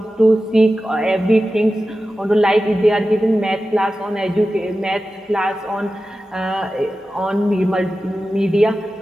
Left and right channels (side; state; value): both; normal; correlation 0.93